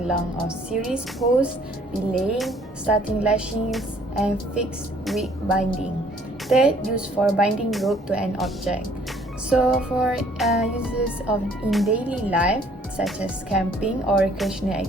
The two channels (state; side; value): normal; both; correlation 0.60